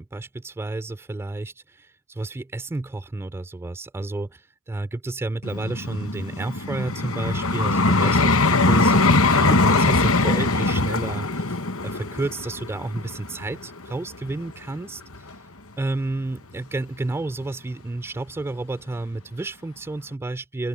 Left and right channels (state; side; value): normal; both; correlation 0.41